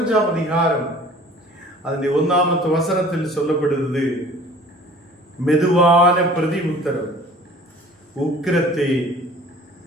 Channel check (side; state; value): both; normal; correlation 0.48